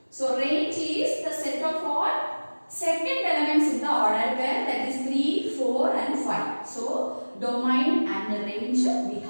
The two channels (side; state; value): both; inverted; correlation -1.00